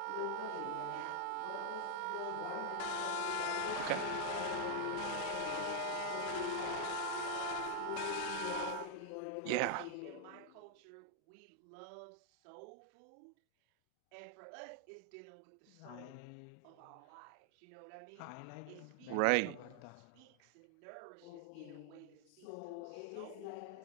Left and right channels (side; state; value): both; different; correlation 0.00